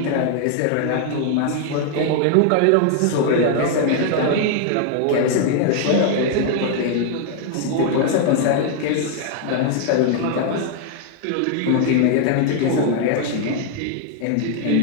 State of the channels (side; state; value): both; different; correlation 0.00